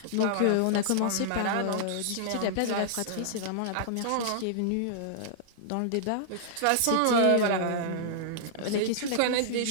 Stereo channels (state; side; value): different; both; correlation -0.01